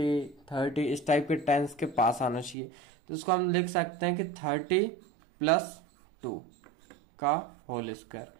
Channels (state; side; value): drops out; left; at 2.6 s